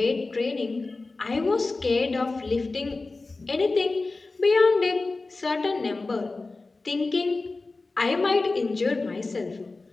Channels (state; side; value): quieter; right; 3.5 dB